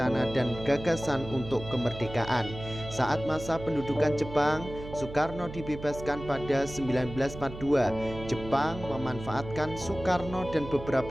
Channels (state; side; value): noise; right; hum, 12 dB below the sound